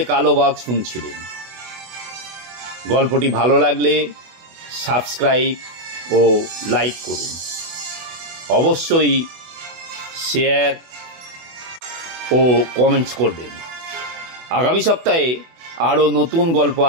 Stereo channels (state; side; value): late; left; 24 ms